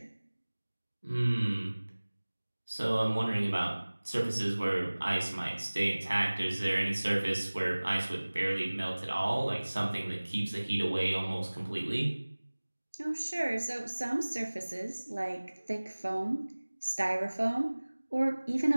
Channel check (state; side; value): inverted; both; correlation -1.00